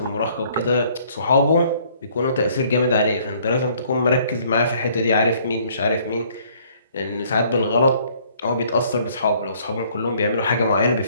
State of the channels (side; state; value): both; inverted; correlation -0.61